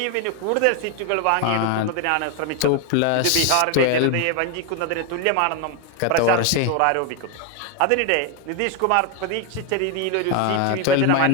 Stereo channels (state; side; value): different; both; correlation 0.01